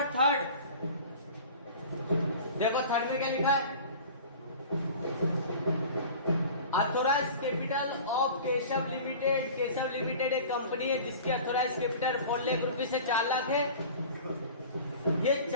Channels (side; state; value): both; inverted; correlation -0.40